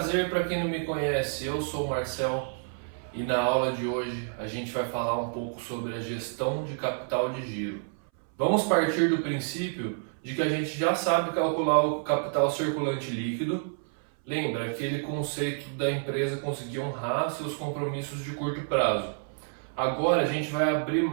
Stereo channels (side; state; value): left; silent; 59 dB below the other